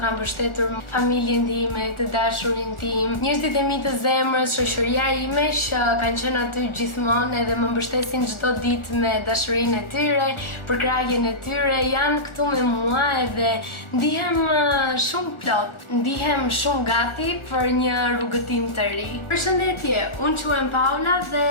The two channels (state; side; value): late; right; 1.4 ms